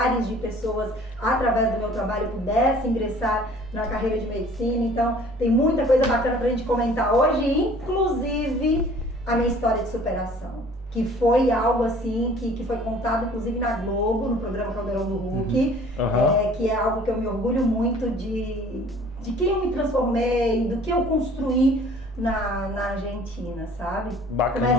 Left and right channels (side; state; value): both; normal; correlation 0.51